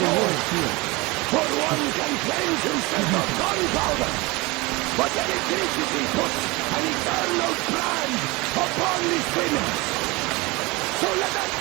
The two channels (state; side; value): quieter; left; 24.1 dB